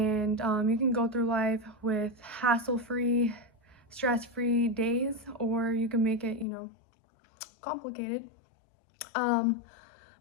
you can go through life with hassle-free, stress-free days, or you can make it, complicated. um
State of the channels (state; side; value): drops out; right; at 6.5 s